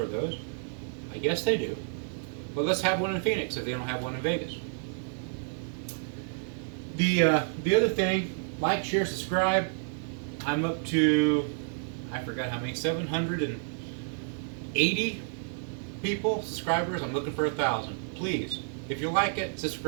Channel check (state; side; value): silent; left; digital silence